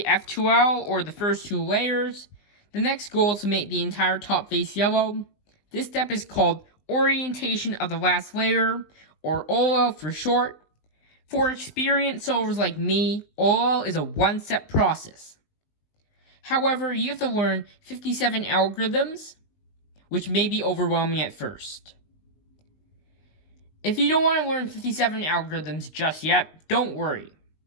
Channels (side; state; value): right; late; 19 ms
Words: F2L or the first two layers, the next goal is to make the entire top face yellow. This step is called orientation of the last layer, or OLL for short. For experienced solvers like me, OLL is a one-step process. However, you have to learn 57 algorithms, which may be overwhelming at first. If you don't want to learn 57 algorithms just yet, don't worry.